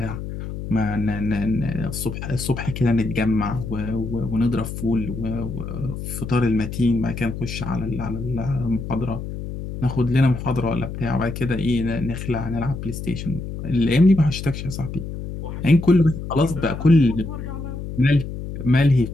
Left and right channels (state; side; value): noise; left; hum, 7 dB below the sound